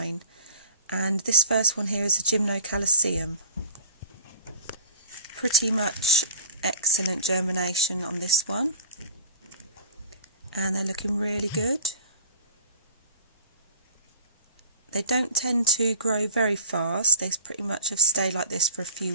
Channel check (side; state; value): both; inverted; correlation -0.42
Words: And this first one here is a germination. Pretty much excellent germination on this one, and they're looking really good. They don't tend to grow very fast. They pretty much have stayed like this for a few